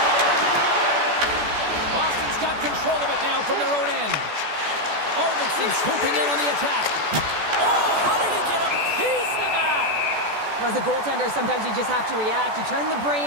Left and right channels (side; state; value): left; late; 14 ms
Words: Boston's got control of it now from their own end. Arvidsson swooping in on the attack. Oh, how did he get a piece of that? As a goaltender, sometimes you just have to react. You turn the